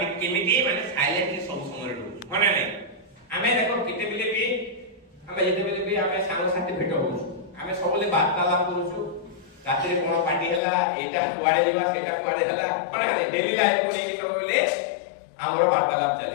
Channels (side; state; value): right; drops out; at 10.6 s